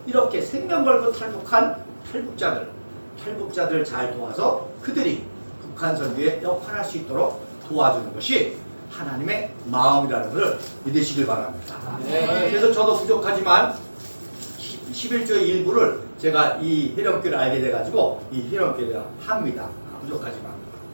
이렇게 생명 걸고 탈북한 탈북자들 잘 도와서 그들이 북한 선교에 역할할 수 있도록 도와주는 것이 하나님의 마음이라는 것을 믿으시길 바랍니다. 네. 그래서 저도 부족하지만 11조의 일부를 제가 이 희령교를 알게 돼가지고 이 희령교를 합니다. 부족하지만.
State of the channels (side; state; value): both; inverted; correlation -1.00